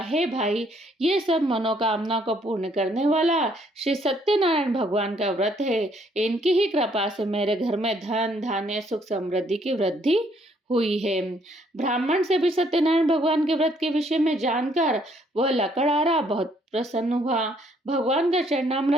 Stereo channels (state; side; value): normal; both; correlation 0.67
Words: भाई, ये सब मनोकामना को पूर्ण करने वाला श्री सत्यनारायण भगवान का व्रत है। इनकी ही कृपा से मेरे घर में धन धान्य सुख समृद्धि की वृद्धि हुई है। ब्राह्मण से भी सत्यनारायण भगवान के व्रत के विषय में जानकर वह लकड़हारा बहुत प्रसन्न हुआ। भगवान का